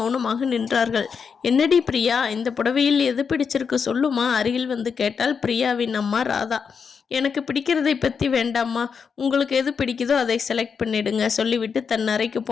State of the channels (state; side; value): quieter; right; 6.1 dB